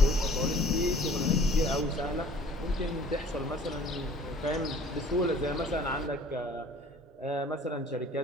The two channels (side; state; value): both; normal; correlation 0.52